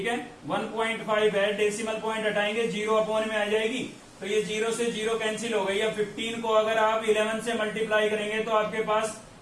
है, 1.5 है, डेसिमल पॉइंट हटाएंगे 0 अपॉन में आ जाएगी, तो ये 0 से 0 कैंसिल हो गई। अब 15 को अगर आप 11 से मल्टीप्लाई करेंगे तो आपके पास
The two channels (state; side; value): identical; both; correlation 1.00